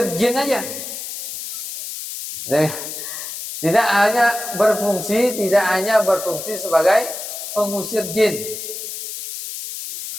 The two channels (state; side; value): noise; left; hiss, 8 dB below the sound